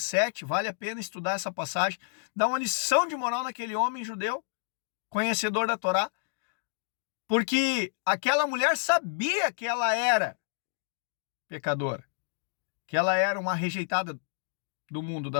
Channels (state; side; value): silent; right; digital silence